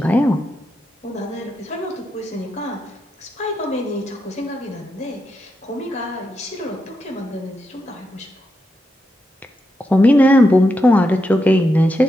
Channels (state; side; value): normal; both; correlation 0.85